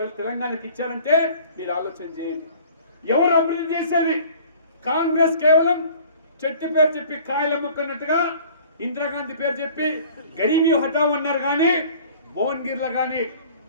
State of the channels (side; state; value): both; inverted; correlation -0.49